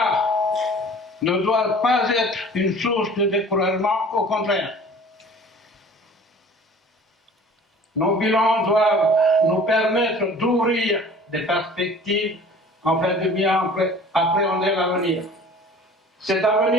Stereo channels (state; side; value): normal; both; correlation 0.46